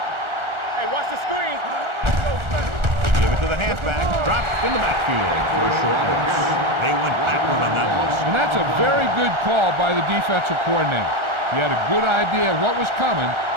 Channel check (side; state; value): left; late; 1.4 ms